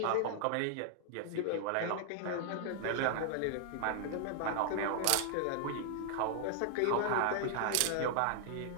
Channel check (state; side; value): different; both; correlation -0.01